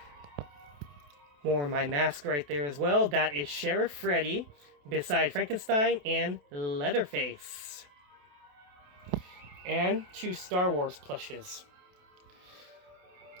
More of my mask right there as well. That is Sheriff Freddy beside Frankenstein and Leatherface. And 2 Star Wars plushes.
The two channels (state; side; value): late; left; 28 ms